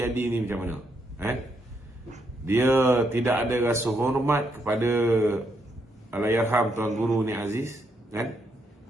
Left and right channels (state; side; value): normal; both; correlation 0.77